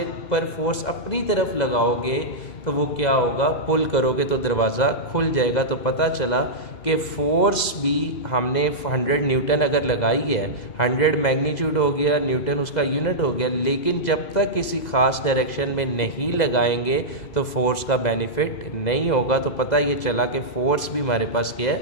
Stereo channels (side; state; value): right; late; 2.0 ms